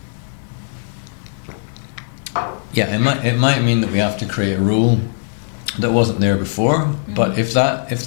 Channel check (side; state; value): right; silent; digital silence